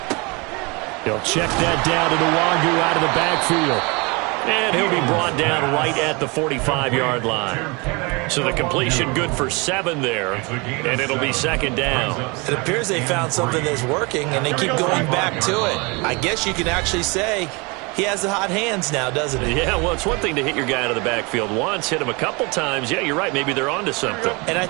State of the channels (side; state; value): left; quieter; 28.2 dB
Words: He'll check that down to Nwangu out of the backfield. And he'll be brought down right at the 45-yard line. So the completion good for 7 there, and it'll be second down. It appears they found something that's working, and they keep going back to it. I guess you can actually say he has the hot hands now, doesn't he? Yeah, well, it's one thing to hit your guy out of the backfield once, hit him a couple times. Yeah, you're right. Maybe they're onto something. And I